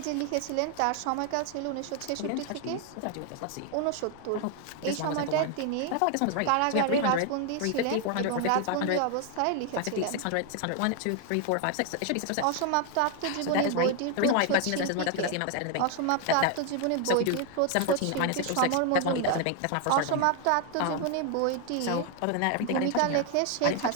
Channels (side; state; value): both; different; correlation 0.01